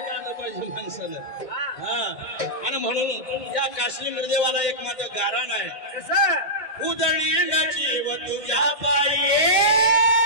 आलं पाहिजे माणसानं. हा आणि म्हणून या काश्मीर निर्देवाला एक माझं गारण आहे. कसं उदळीन जीव तुझ्या पायी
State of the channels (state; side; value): late; right; 1.6 ms